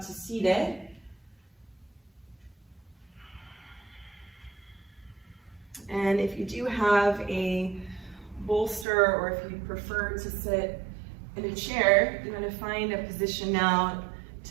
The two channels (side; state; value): left; drops out; at 8.8 s